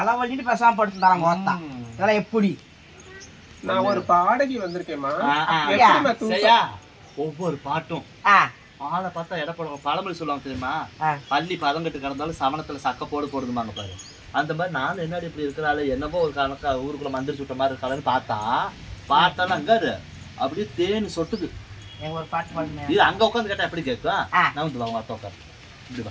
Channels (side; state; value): both; identical; correlation 1.00